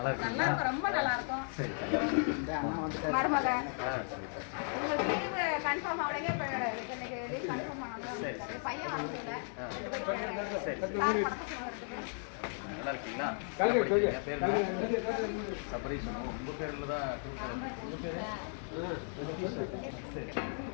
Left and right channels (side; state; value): right; silent; 54 dB below the other